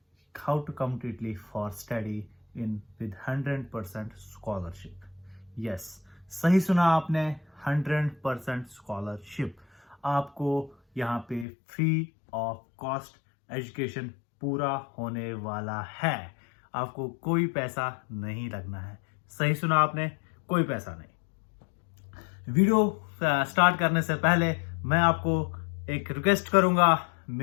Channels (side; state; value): right; drops out; at 11.5 s